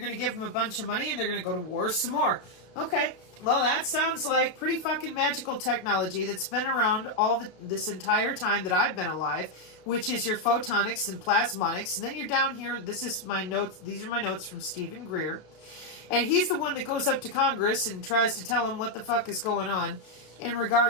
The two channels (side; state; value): right; late; 33 ms